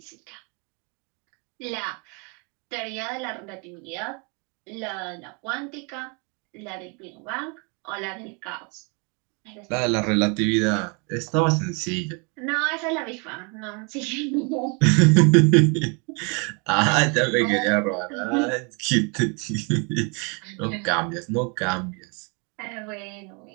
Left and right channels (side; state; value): left; quieter; 33.6 dB